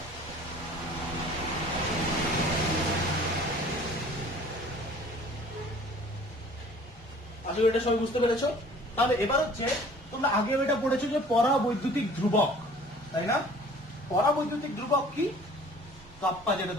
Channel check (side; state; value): both; normal; correlation 0.50